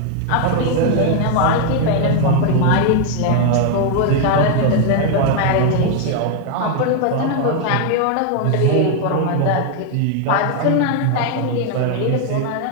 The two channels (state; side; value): different; both; correlation 0.00